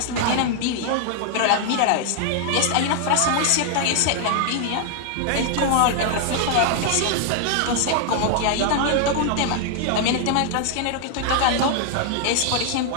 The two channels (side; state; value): both; different; correlation 0.00